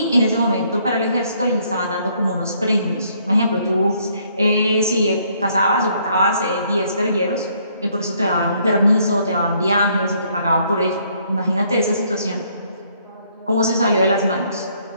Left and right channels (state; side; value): inverted; both; correlation -0.67